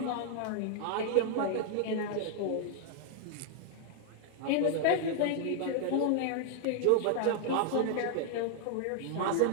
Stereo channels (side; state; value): both; different; correlation 0.00